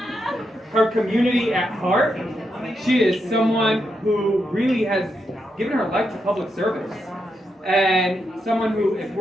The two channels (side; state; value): both; normal; correlation 0.83